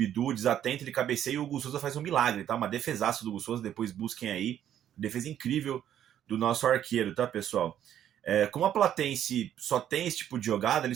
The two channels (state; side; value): quieter; left; 10.6 dB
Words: desatento, ele cabeceia e o Hugo Souza faz um milagre, tá? Uma defesaço do Hugo Souza, depois busquem aí. Defesa incrível do nosso arqueiro, tá, pessoal? Como a Platense só tem esse tipo de jogada,